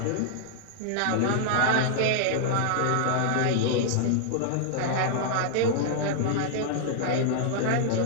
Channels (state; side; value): different; both; correlation -0.01